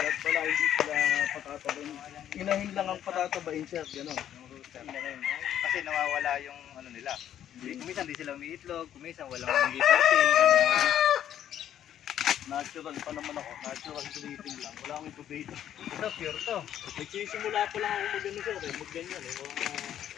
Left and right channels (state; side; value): quieter; right; 10.6 dB